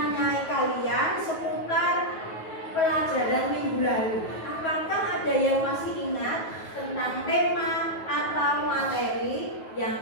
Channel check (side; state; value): right; late; 9.3 ms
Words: kalian seputar pelajaran minggu lalu. Apakah ada yang masih ingat tentang tema atau materi yang